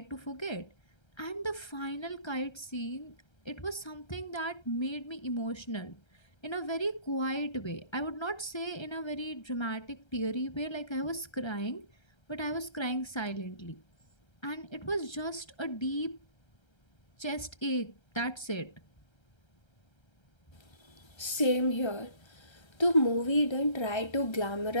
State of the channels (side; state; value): right; late; 1.3 ms